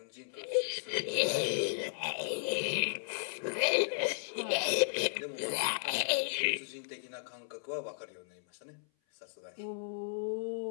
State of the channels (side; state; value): right; silent; 55 dB below the other